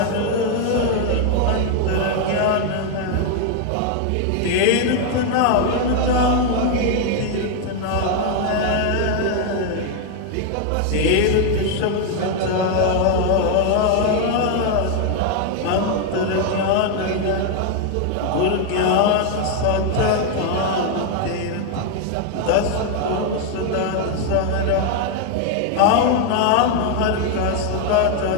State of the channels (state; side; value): different; both; correlation 0.01